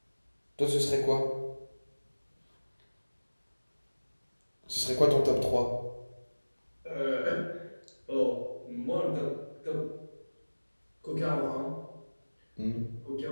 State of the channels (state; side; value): inverted; both; correlation -1.00